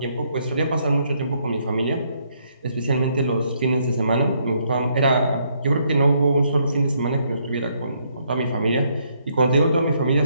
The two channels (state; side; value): inverted; both; correlation -0.72